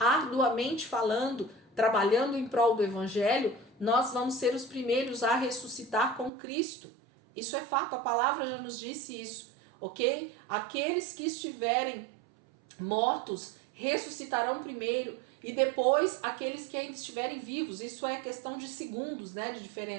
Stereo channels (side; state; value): left; drops out; at 6.3 s